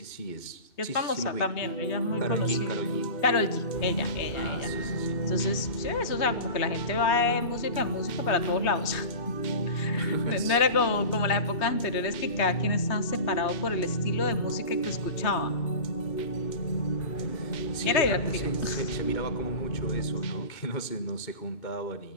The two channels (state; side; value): late; right; 3.2 ms